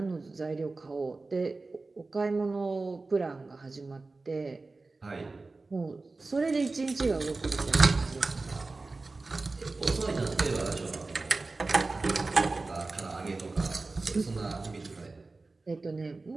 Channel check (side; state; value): left; quieter; 3.5 dB